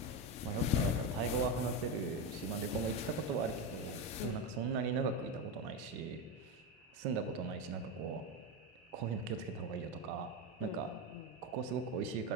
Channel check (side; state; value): both; normal; correlation 0.14